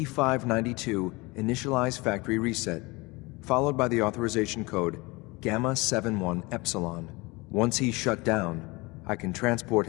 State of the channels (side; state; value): right; quieter; 24.5 dB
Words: initialize factory reset, followed by the authorization code Gamma 71 Epsilon. Once he's shut down, I can transport